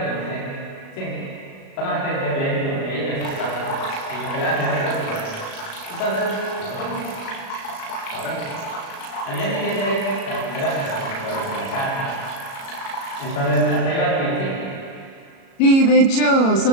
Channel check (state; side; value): late; right; 37 ms